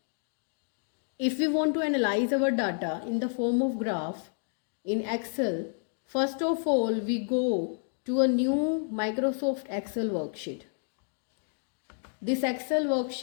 If we want to analyze our data in the form of graph in Excel, first of all we go to a new Microsoft Excel worksheet. This Excel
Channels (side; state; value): right; silent; digital silence